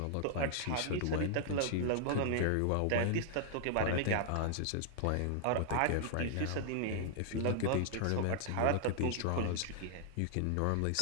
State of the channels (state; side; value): different; both; correlation 0.00